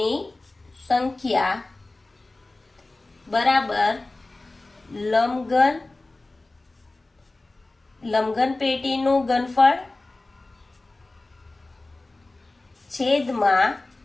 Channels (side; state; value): right; quieter; 3.0 dB